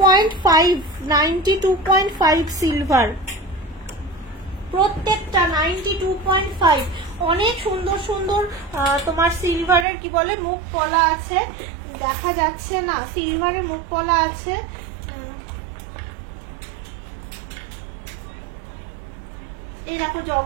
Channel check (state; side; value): drops out; left; at 9.9 s